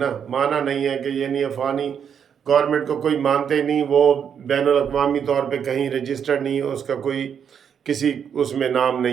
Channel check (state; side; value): quieter; left; 7.8 dB